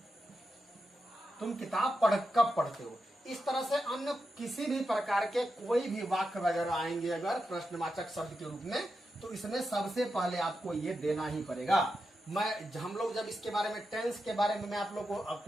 तुम किताब कब पढ़ते हो। इस तरह से अन्य किसी भी प्रकार के कोई भी वाक्य वगैरह आएंगे अगर प्रश्नवाचक शब्द के रूप में, तो इसमें सबसे पहले आपको ये देना ही पड़ेगा। हम लोग जब इसके बारे में टेंस के बारे में मैं आप लोग को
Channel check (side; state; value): both; normal; correlation 0.88